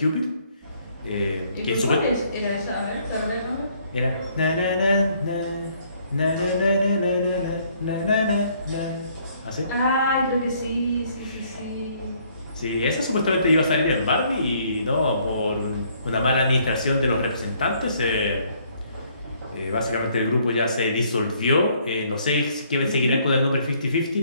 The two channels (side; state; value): both; inverted; correlation -0.65